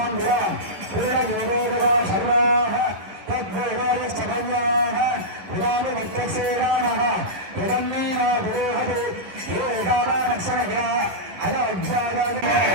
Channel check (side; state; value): left; late; 11 ms